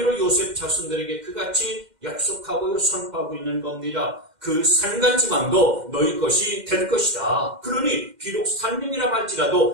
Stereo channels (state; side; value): late; left; 2.1 ms